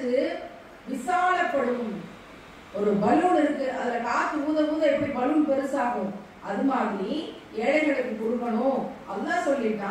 விசாலப்படும். ஒரு பலூன் இருக்கு, அதுல காத்து ஊத ஊத எப்படி பலூன் பெருசாகும், அது மாதிரி ஏழைகளுக்கு கொடுக்கணும். அல்லாஹ்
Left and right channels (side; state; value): both; identical; correlation 1.00